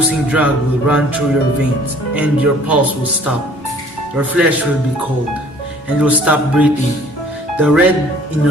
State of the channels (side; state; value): both; normal; correlation 0.54